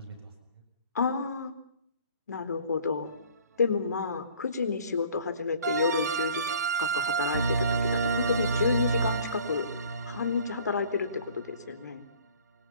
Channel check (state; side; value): inverted; both; correlation -0.52